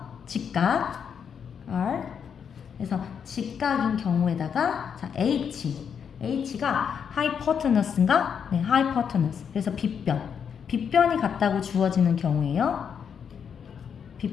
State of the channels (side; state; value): right; quieter; 7.3 dB